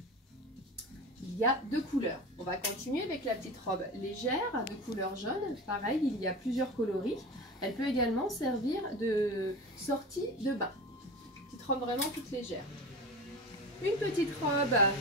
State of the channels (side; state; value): both; normal; correlation 0.30